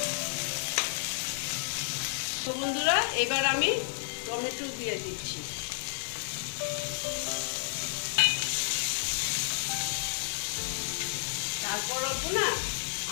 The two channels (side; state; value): right; silent; digital silence